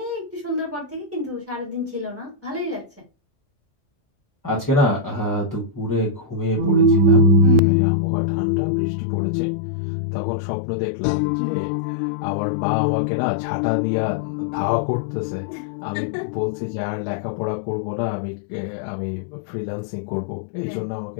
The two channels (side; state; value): right; drops out; at 7.6 s